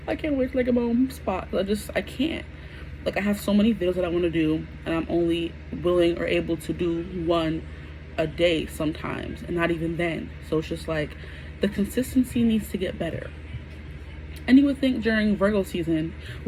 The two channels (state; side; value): identical; both; correlation 1.00